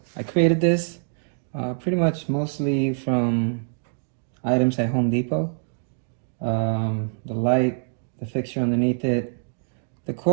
I created this pretty much mostly from items at Home Depot. The light, the fixture underneath it. The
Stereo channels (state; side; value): silent; left; digital silence